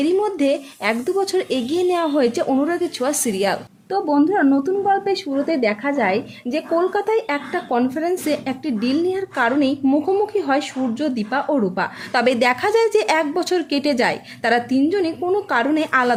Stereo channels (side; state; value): both; identical; correlation 1.00